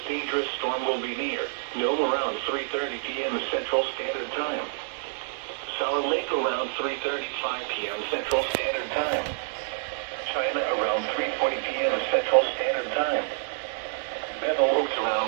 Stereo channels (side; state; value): left; silent; digital silence